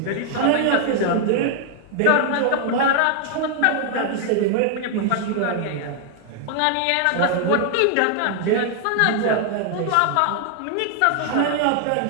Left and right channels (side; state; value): both; different; correlation 0.00